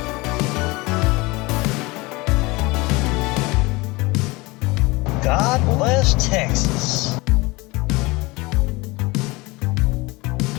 God bless Texas.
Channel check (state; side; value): quieter; right; 23.6 dB